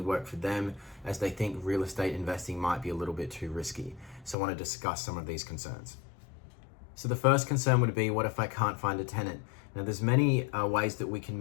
work for them, as they think real estate investing might be a little bit too risky. So I want to discuss some of these concerns. So the first concern would be, what if I can't find a tenant? Now there's many ways that we can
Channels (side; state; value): right; drops out; at 4.4 s